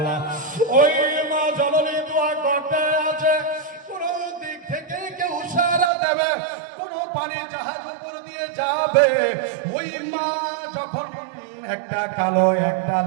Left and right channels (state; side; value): drops out; left; at 5.9 s